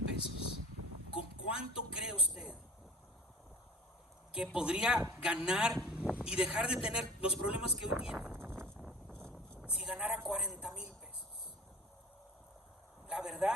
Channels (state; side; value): normal; both; correlation 0.42